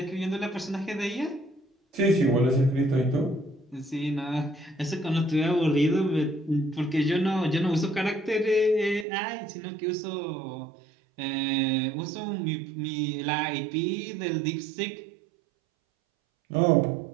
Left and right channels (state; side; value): drops out; left; at 9.1 s